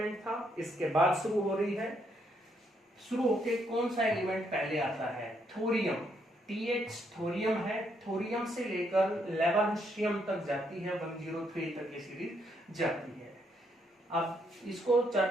था, इसके बाद शुरू हो रही है। शुरू होके कौन सा एलिमेंट पहले आता है? थोरियम। TH थोरियम है, थोरियम से लेकर लेवरेंशियम तक जाती है, 103 तक ये सीरीज जाती है। अब इसको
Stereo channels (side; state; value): both; normal; correlation 0.74